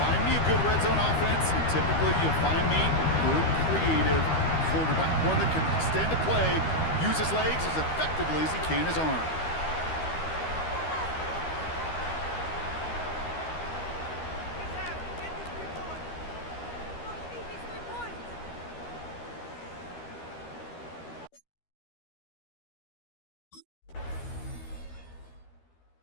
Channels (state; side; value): late; right; 13 ms